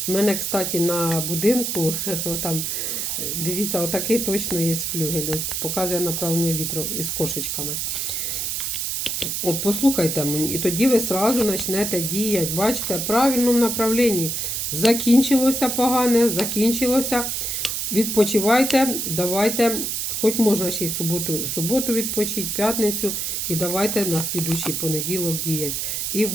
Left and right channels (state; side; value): noise; right; hiss, 1 dB below the sound